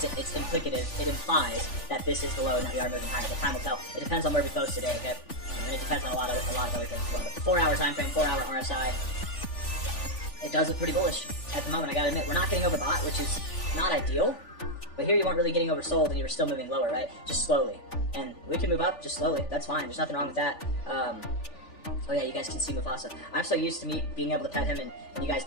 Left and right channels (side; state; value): right; late; 3.4 ms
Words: implicative, it implies that this is the low and that we are moving higher, but time will tell. It depends on where we close today, okay? And it depends on a lot of other things as well. But the 4 hour time frame, 4 hour RSI, it does look pretty bullish at the moment. I gotta admit, we're not getting overbought, which is not ideal, but here you weren't really getting oversold and you were still moving lower, right? Just slowly. And we can move up just slowly. That's fine. There's nothing wrong with that. Oh yeah, you guys can see Mufasa. I'm so used to me being able to pet him and you guys